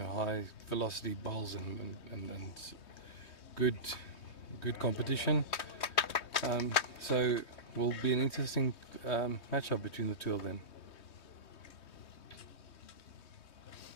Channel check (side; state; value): right; late; 3.2 ms